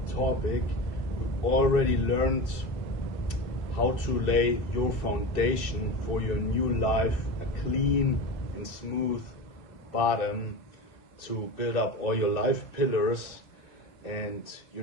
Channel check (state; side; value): late; right; 2.6 ms